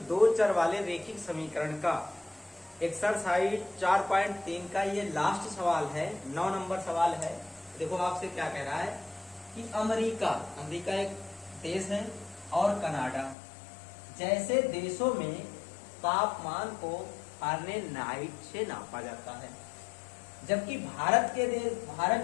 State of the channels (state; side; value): drops out; right; at 13.4 s